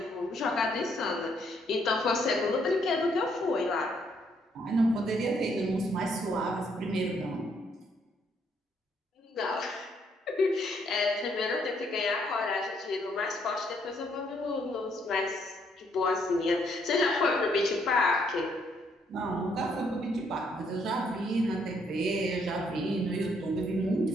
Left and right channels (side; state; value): both; normal; correlation 0.70